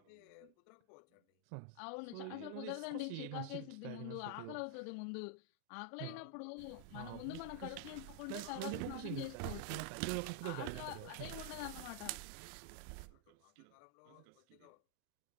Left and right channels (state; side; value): different; both; correlation 0.00